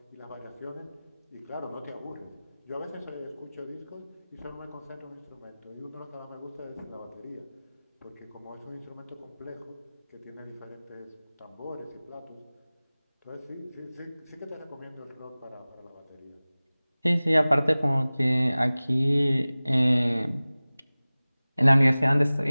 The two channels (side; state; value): both; inverted; correlation -0.99